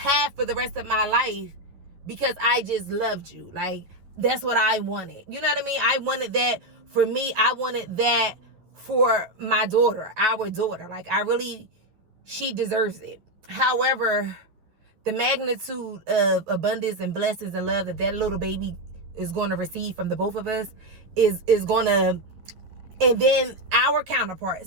for the rest of my life, because I just loved you. Like, that's what I wanted. You know what I mean? I wanted that for me. I wanted that for my daughter, our daughter. Like, she deserves it. However, the magnitude of abundance and blessings and love that little baby is going to receive from the both of us is going to, and then our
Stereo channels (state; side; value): late; left; 11 ms